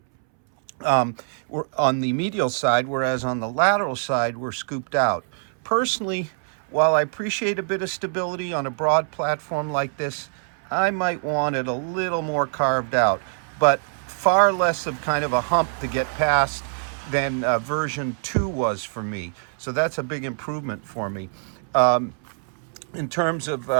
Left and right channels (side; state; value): left; silent; 63 dB below the other